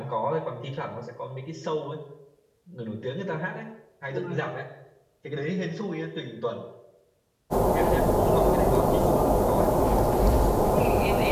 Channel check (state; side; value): identical; both; correlation 1.00